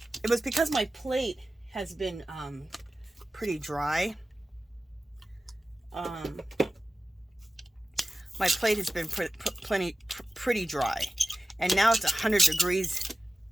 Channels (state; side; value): normal; both; correlation 0.95